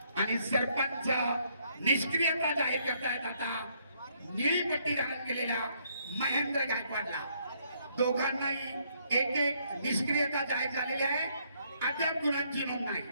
आणि सरपंच निष्क्रियता जाहीर करतायत. आता निळी पट्टी धारण केलेल्या महेंद्र गायकवाडला दोघांनाही एक एक निष्क्रियता जाहीर झालेली आहे. अद्याप गुणांची नोंद नाही.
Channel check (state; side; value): inverted; both; correlation -0.70